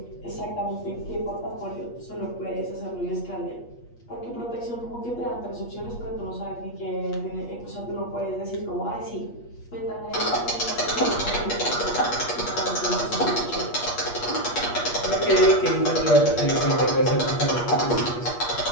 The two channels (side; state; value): right; late; 8.4 ms